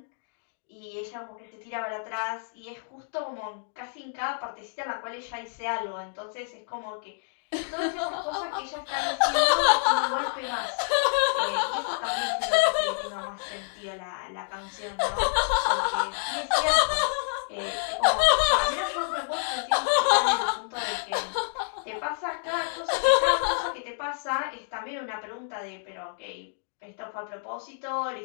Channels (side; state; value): right; silent; digital silence